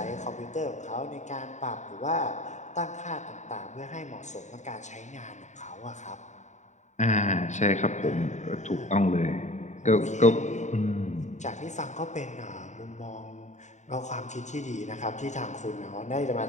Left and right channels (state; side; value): late; right; 0.34 ms